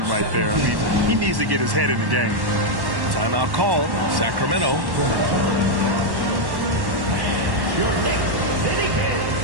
right there. I mean, he needs to get his head in the game. Timeout called. Sacramento.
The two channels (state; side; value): late; left; 1.1 ms